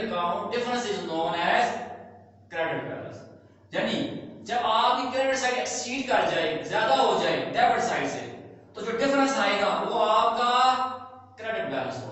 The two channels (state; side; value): identical; both; correlation 1.00